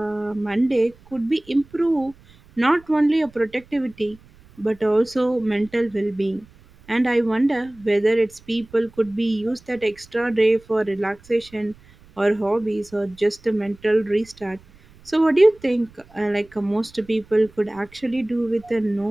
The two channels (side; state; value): right; noise; rumble, 26 dB below the sound